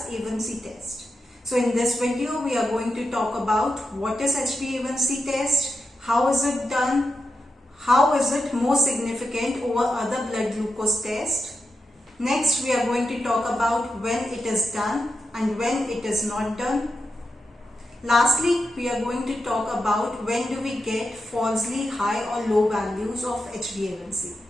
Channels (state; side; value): normal; both; correlation 0.88